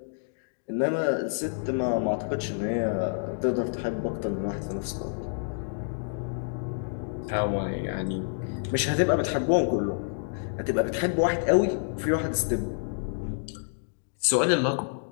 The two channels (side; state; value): right; silent; digital silence